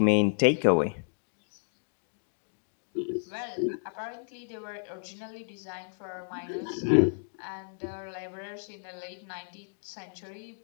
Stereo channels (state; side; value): silent; right; digital silence